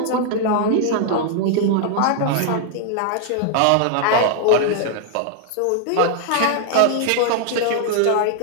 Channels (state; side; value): different; both; correlation 0.00